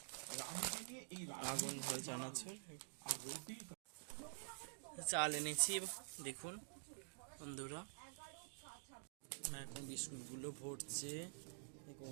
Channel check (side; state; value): left; silent; digital silence